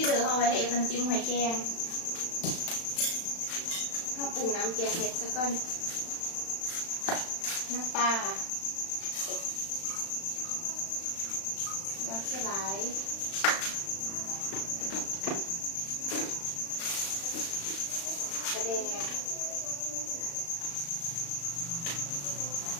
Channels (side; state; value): right; late; 35 ms